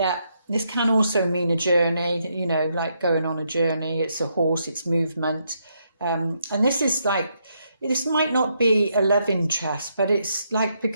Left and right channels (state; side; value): inverted; both; correlation -0.78